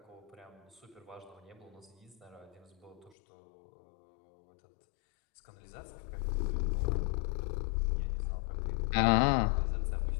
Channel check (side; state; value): right; drops out; at 3.1 s